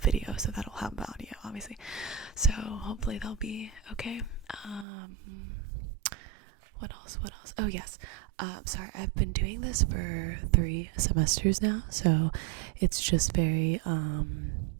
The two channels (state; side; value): drops out; left; at 4.9 s